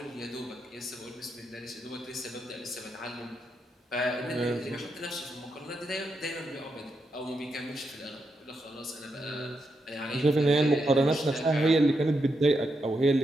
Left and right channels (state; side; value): normal; both; correlation 0.83